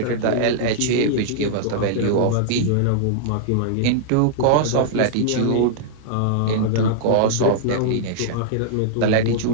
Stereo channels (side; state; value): both; different; correlation -0.01